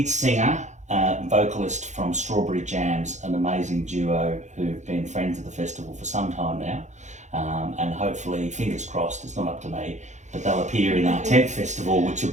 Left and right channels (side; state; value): left; late; 0.34 ms